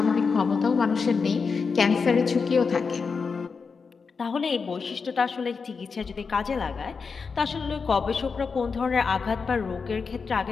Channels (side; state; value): right; quieter; 5.2 dB